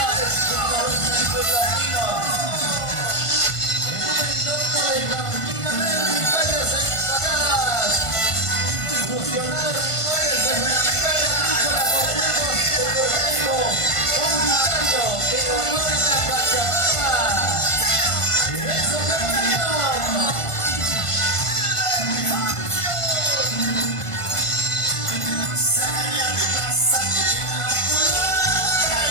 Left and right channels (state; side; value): late; right; 1.5 ms